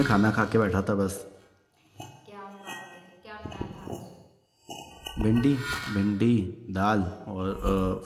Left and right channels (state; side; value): identical; both; correlation 1.00